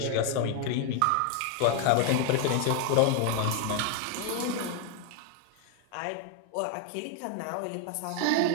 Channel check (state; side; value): different; both; correlation 0.01